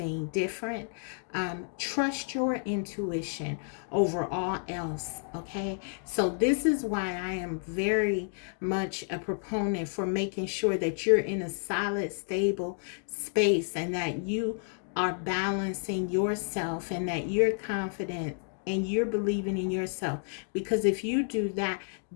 different. Trust your intuition over all else, okay? So, this is why I am very much a proponent for making sure that you're in a solid, stable space and that you are balancing yourself and that you're confident and you're believing in yourself. Because if you do that,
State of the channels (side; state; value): right; silent; 57 dB below the other